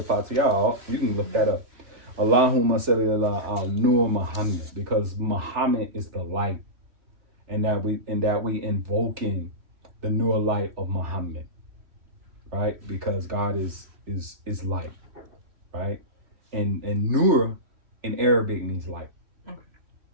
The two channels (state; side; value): late; left; 3.4 ms